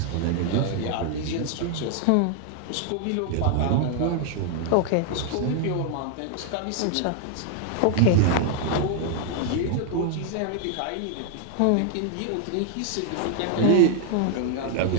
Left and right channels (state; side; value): different; both; correlation 0.00